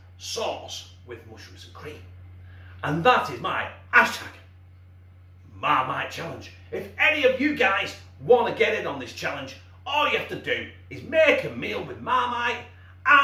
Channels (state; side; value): identical; both; correlation 1.00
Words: sauce with mushrooms and cream. And that is my hashtag Marmite Challenge. If any of you guys want to get in on this challenge, all you have to do is make a meal with Marmite